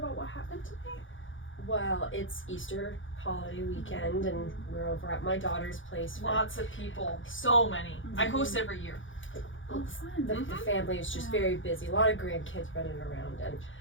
what happened today? Well, it's Easter holiday weekend, and we're over at my daughter's place. Lots of people, so many. I host every year. Oh, fun. The family is just very busy. A lot of grandkids running around, and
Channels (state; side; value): late; right; 0.57 ms